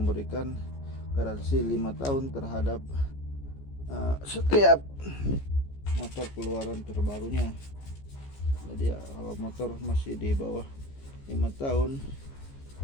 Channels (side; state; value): right; late; 15 ms